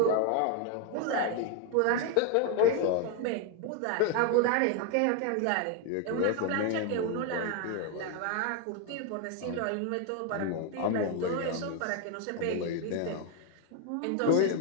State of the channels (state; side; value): different; both; correlation 0.01